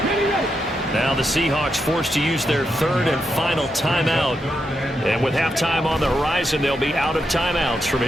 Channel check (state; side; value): normal; both; correlation 0.84